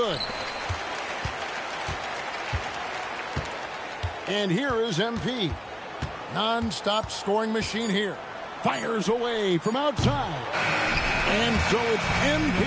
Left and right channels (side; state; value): both; identical; correlation 1.00